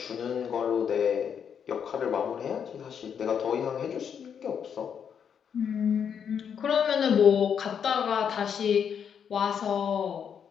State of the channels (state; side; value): quieter; right; 7.7 dB